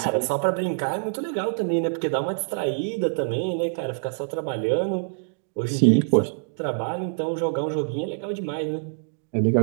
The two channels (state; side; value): silent; left; digital silence